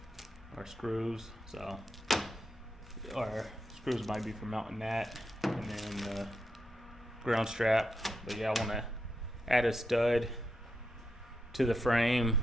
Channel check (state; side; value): normal; both; correlation 0.85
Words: or screws, so, or screws might be for mounting that, and then the ground strap. But yeah, I want to add a stud to the frame